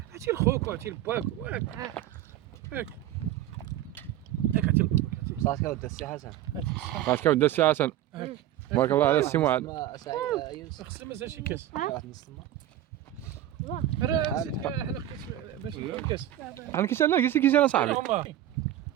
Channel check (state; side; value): quieter; left; 12.6 dB